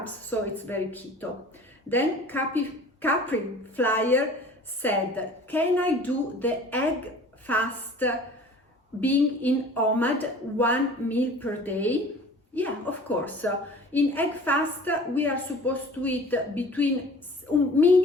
so it's very keto. Then Capri Flyer said, can I do the egg fast being in OMAD 1 meal per day? Yeah, of course. In egg fast, we are supposed to eat between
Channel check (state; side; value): normal; both; correlation 0.45